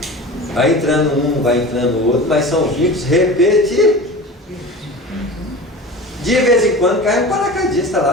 Vai entrando um, vai entrando o outro, mas são vínculos repetitivos. De vez em quando cai um paraquedista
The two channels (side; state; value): both; normal; correlation 0.34